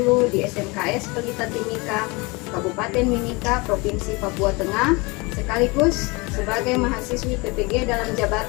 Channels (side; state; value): right; quieter; 26.3 dB